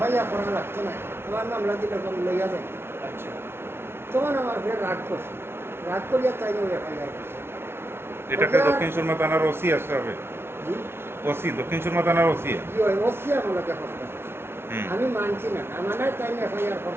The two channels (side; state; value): left; late; 0.12 ms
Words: করা লাগতো না আমার মামলা দিলে লইয়া দেন তখন আমার ফের রাগ করছে রাগ করিয়া তাই এফআইআর করছে এটাকে দক্ষিণ সুরমা থানার ওসি আসবে জি ওসি দক্ষিণ সুরমা থানার ওসি জি হয় ওসি আমাকে কষ্ট আমি মানছি না আমার তাই এফআইআর